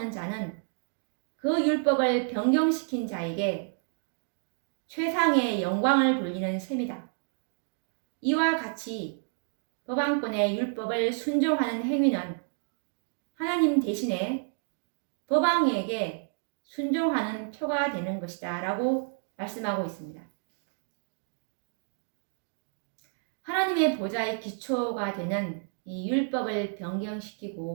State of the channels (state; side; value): silent; left; 58 dB below the other